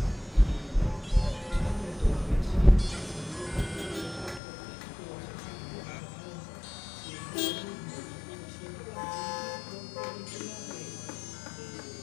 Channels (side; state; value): right; drops out; at 4.4 s